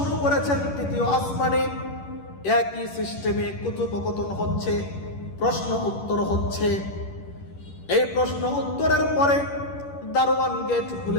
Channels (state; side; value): late; right; 11 ms